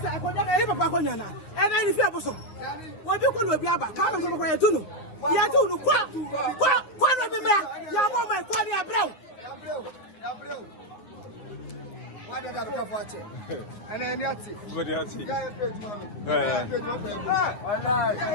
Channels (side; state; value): right; late; 9.7 ms